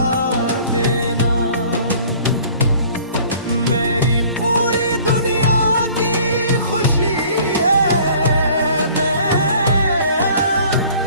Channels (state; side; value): inverted; both; correlation -0.51